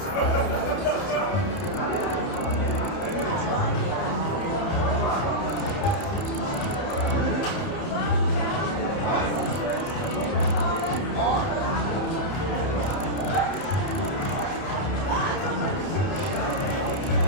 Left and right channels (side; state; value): right; late; 30 ms